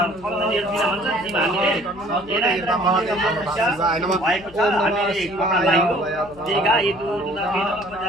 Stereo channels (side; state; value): left; noise; hum, 21 dB below the sound